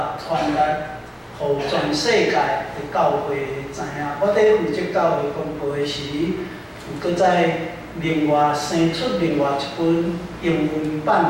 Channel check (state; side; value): identical; both; correlation 1.00